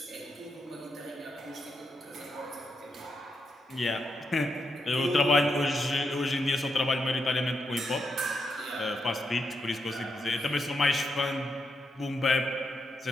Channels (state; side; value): normal; both; correlation 0.83